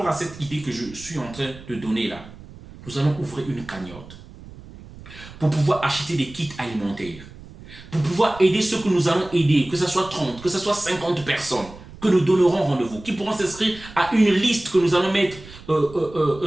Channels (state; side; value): noise; right; rumble, 18 dB below the sound